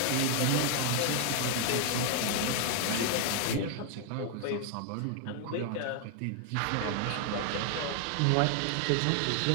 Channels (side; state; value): both; different; correlation 0.00